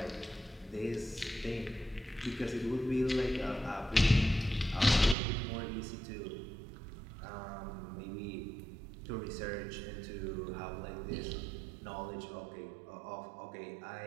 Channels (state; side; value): drops out; left; at 5.2 s